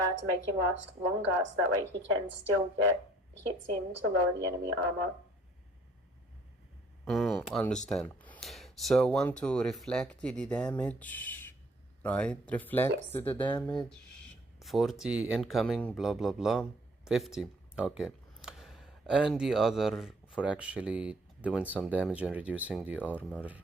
make him last longer, so that way he can still get hits in to lower the enemy armor. Understand. So want to reflect the damage, right? Reflect the damage. 40 incoming, blah, blah, blah. 50. Okay. And the other for actually doing some damage and reducing the armor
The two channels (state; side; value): normal; both; correlation 0.60